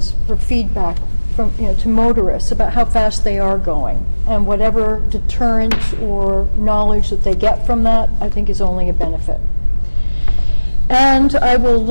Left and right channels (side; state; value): both; inverted; correlation -1.00